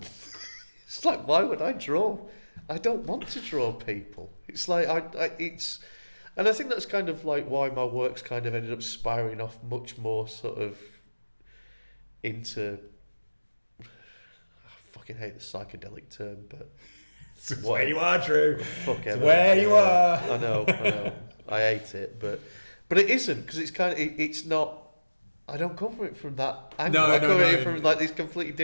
It's like, why would I draw? I don't want to draw people. It's like and I think that's kind of like why my work's kind of ended up spiraling off much more sort of into. I fucking hate the psychedelic term, but it's where you are, Drew. It's where you are. I know. I hate it, but it isn't, because it's kind of it's not. I don't come from it from that angle. I come from it from like this completely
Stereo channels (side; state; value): both; inverted; correlation -1.00